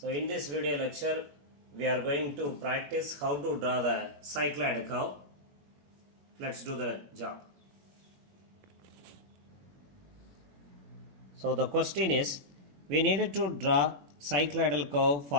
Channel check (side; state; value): left; late; 21 ms